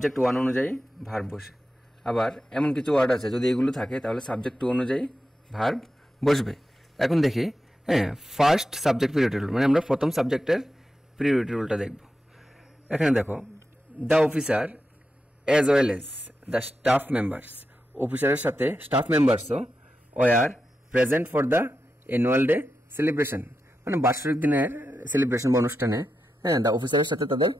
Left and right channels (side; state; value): both; normal; correlation 0.89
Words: 1 অনুযায়ী ভার্ব বসে। আবার এমন কিছু ওয়ার্ড আছে, যদি এগুলো থাকে তাহলে সাবজেক্ট 2 অনুযায়ী ভার্ব বসবে। এখন দেখি, ফার্স্ট সাবজেক্ট প্রায়োরিটি রুল মানে আমরা প্রথম সাবজেক্টের প্রায়োরিটি রুলটা দেখব। এখানে দেখো, the officer as well as the staff members. অফিসারের সাথে স্টাফ মেম্বার্সও were present for the annual day celebration, মানে বার্ষিক দিনের সেলিব্রেশন বা অনুষ্ঠানে দ্য অফিসারের সাথে তাদের